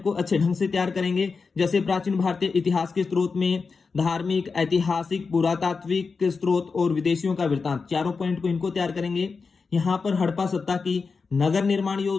को अच्छे ढंग से तैयार करेंगे। जैसे प्राचीन भारतीय इतिहास के स्रोत में धार्मिक, ऐतिहासिक, पुरातात्विक स्रोत और विदेशियों का वृत्तांत, चारों पॉइंट को इनको तैयार करेंगे। यहाँ पर हड़प्पा सप्ताह की नगर निर्माण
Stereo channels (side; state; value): right; quieter; 4.8 dB